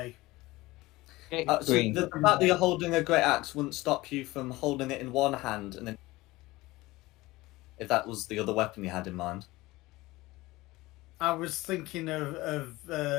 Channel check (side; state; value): right; quieter; 19.8 dB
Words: So Green. the fact that you're holding a great axe wouldn't stop you from holding it in one hand and then... If that was the other weapon you had in mind. I was thinking of